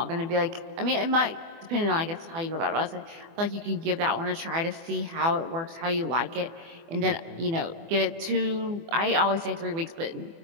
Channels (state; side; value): late; left; 24 ms